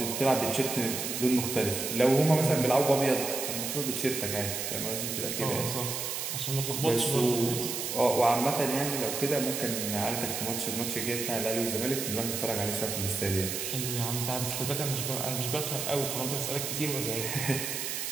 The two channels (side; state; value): right; noise; hiss, 3 dB below the sound